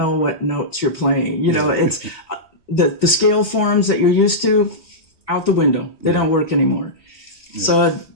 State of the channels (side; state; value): right; late; 3.2 ms